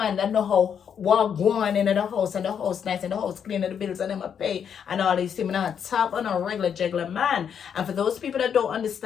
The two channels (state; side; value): quieter; right; 7.9 dB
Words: that know how what going into the house and the house nice and the house clean and the bills and them a pay and all these things. I'm not top on a regular juggler man. And for those people that don't